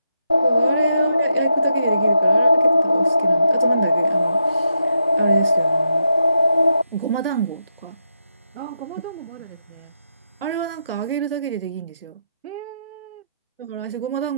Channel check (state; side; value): inverted; both; correlation -0.82